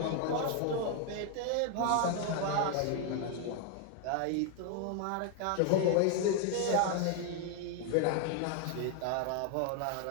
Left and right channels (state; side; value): different; both; correlation 0.00